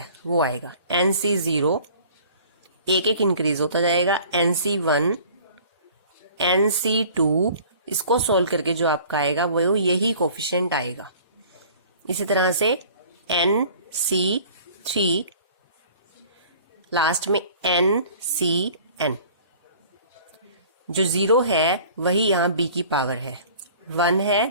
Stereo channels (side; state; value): both; inverted; correlation -0.49